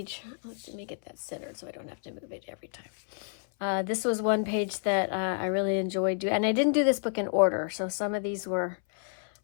Let me get that centered so I don't have to move it every time. This was one page that I really enjoyed doing. And I didn't do this book in order, so some of these were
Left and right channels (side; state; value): right; silent; 58 dB below the other